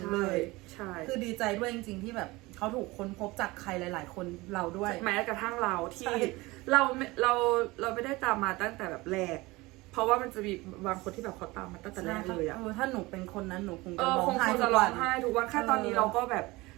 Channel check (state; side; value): quieter; left; 21.6 dB